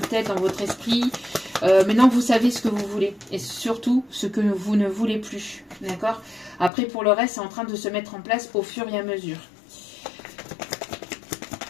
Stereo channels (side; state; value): right; drops out; at 6.7 s